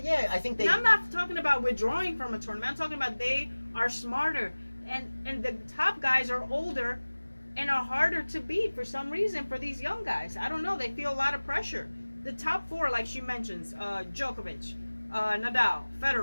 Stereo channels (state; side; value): inverted; both; correlation -1.00